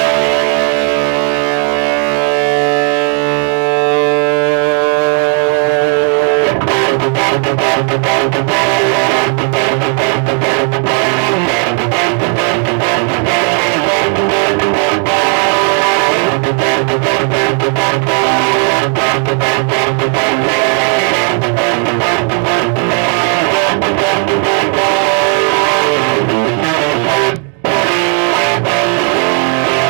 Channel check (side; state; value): left; quieter; 39.2 dB